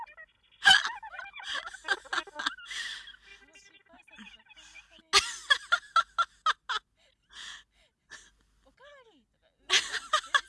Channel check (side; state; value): both; identical; correlation 1.00